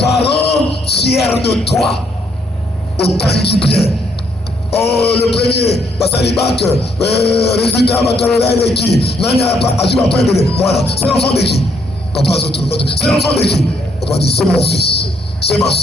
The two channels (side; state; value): both; normal; correlation 0.72